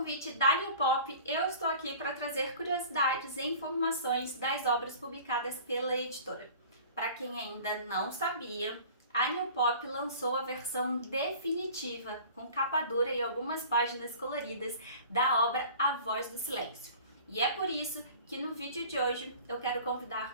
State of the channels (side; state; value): both; inverted; correlation -0.43